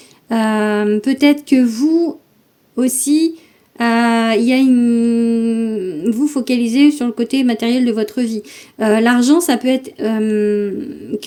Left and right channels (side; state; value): both; identical; correlation 1.00